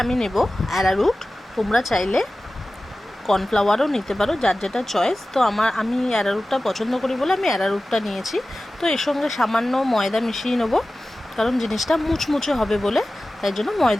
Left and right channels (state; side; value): normal; both; correlation 0.96